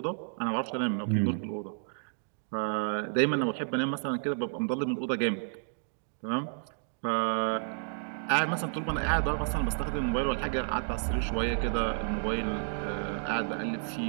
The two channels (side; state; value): left; silent; digital silence